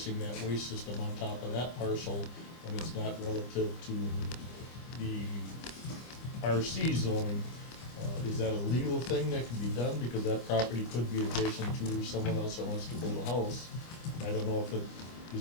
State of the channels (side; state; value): right; late; 25 ms